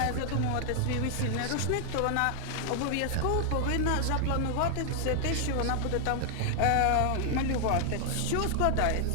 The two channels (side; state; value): both; different; correlation 0.00